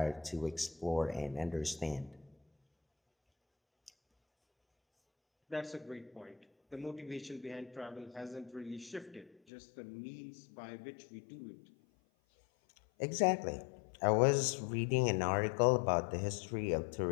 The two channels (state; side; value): drops out; right; at 9.3 s